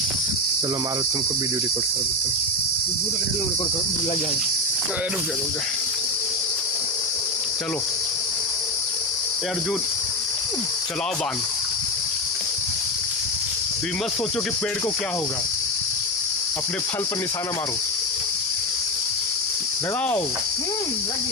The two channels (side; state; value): both; normal; correlation 0.13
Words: चलो मारो, तुमको वीडियो रिकॉर्ड कर देते हैं। रिकॉर्ड लग जाएगा। रुक जा चलो अर्जुन चलाओ बाण। तुम मत सोचो कि पेड़ को क्या होगा, अपने फल पर निशाना मारो। लगाओ लग